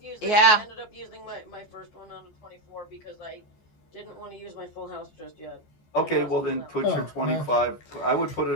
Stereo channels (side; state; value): right; late; 14 ms